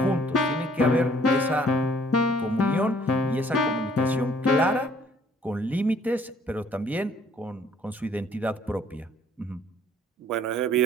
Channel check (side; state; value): both; normal; correlation 0.60